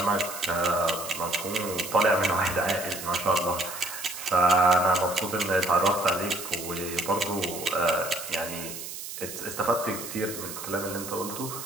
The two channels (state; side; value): noise; right; hiss, 9 dB below the sound